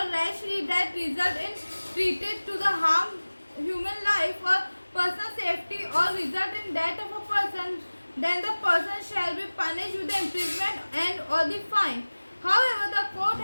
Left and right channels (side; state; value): both; inverted; correlation -1.00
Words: rashly that result in treated to the harm human life or personal safety or result in death of a person, then the person shall be punished with the imprisonment and or the fine. However, the court